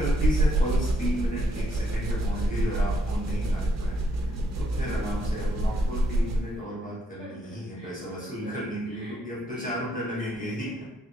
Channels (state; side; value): normal; both; correlation 0.74